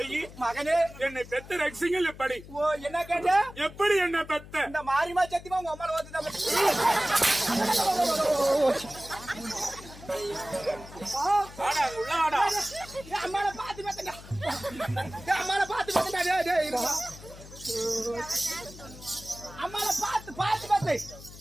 மகனே, என்னை பெத்த ரகசியங்கள் எப்படி? ஓ என்ன கேட்ட? எப்படி என்ன பெத்த? இந்த மாரிமா சத்தியமா உங்க அம்மால வந்து அம்மால பாத்து பெத்தடா. அம்மால பாத்து பெத்தடா. டேய் அம்மால பாத்து பெத்து.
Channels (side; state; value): left; noise; hum, 17 dB below the sound